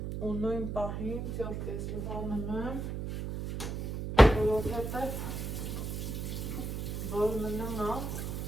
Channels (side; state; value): right; noise; hum, 4 dB below the sound